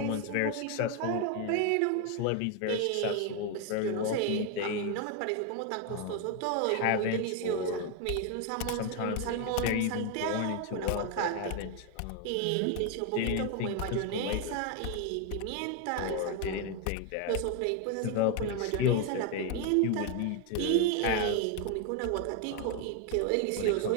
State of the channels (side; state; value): both; different; correlation 0.01